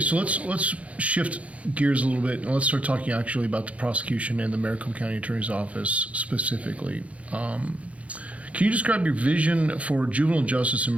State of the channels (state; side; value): late; left; 0.065 ms